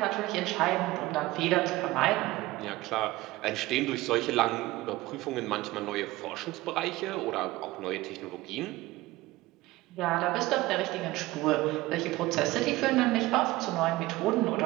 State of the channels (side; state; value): left; quieter; 18.8 dB